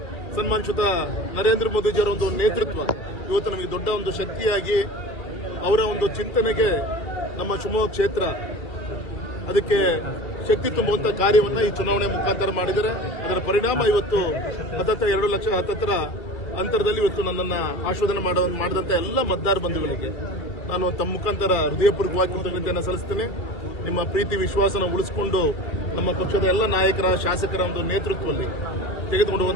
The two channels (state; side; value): late; right; 2.2 ms